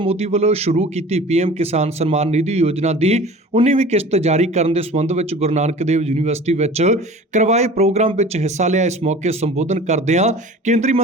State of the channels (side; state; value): both; normal; correlation 0.42